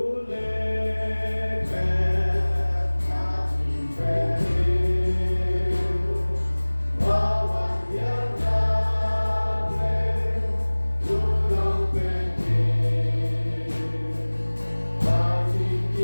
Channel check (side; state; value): both; inverted; correlation -1.00